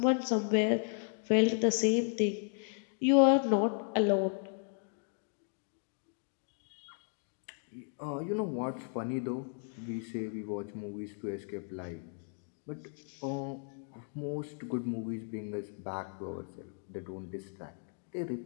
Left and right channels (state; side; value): silent; right; 54 dB below the other